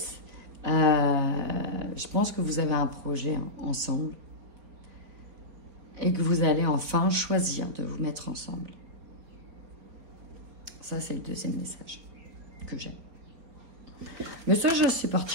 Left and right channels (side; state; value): left; late; 4.3 ms